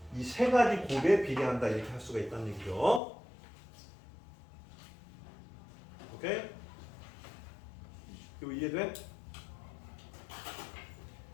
이 세 가지 곱에 비례한다 이렇게 할 수가 있다는 얘기죠. 오케이? 이거 이해돼?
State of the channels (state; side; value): drops out; right; at 3.0 s